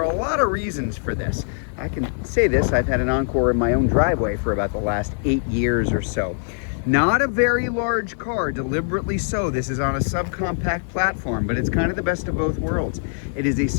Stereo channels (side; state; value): right; silent; 64 dB below the other